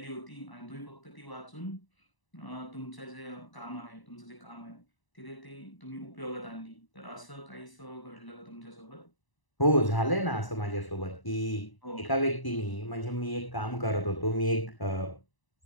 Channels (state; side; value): late; right; 1.0 ms